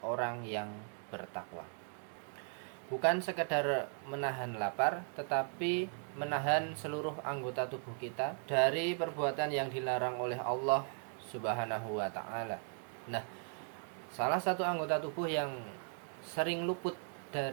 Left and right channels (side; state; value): left; silent; 53 dB below the other